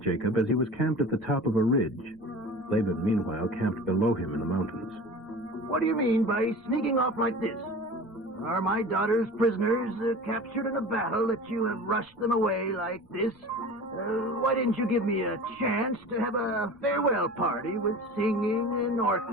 as he was camped at the top of a ridge. Laban, meanwhile, camped below him in the mountains. What do you mean by sneaking off like this? Are my daughters prisoners captured in a battle that you have rushed them away like this? Why didn't you give me a chance to have a farewell party with singing and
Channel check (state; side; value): normal; both; correlation 0.37